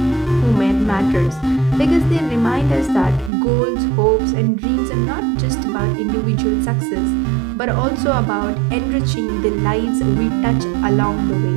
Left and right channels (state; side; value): drops out; left; at 3.3 s